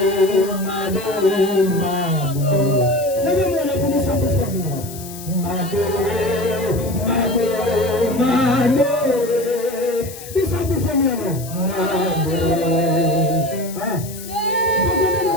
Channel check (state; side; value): noise; left; hiss, 14 dB below the sound